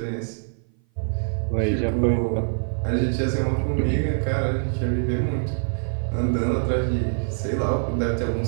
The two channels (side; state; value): left; silent; 57 dB below the other